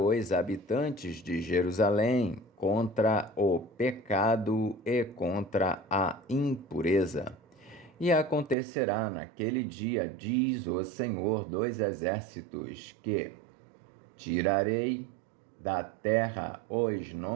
habitantes de Jerusalém contra o pecado e contra a impureza. E acontecerá naquele dia, diz o Senhor dos Exércitos, que tirarei da terra os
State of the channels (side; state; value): left; drops out; at 8.6 s